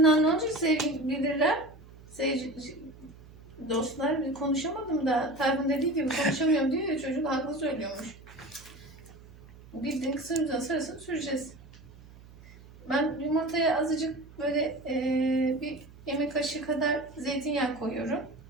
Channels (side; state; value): right; noise; hum, 21 dB below the sound